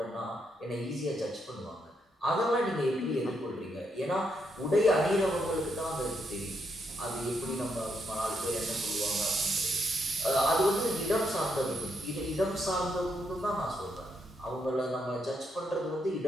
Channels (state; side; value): normal; both; correlation 0.78